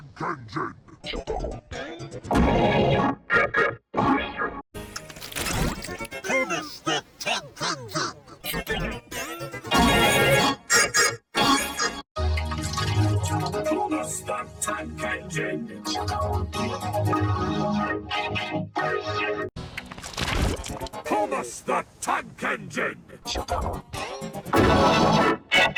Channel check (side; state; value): both; identical; correlation 1.00